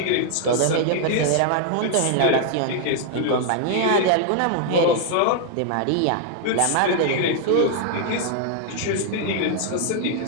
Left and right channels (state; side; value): different; both; correlation 0.00